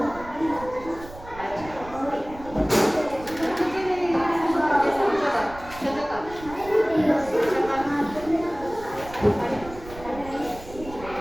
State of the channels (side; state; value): right; noise; rumble, 16 dB below the sound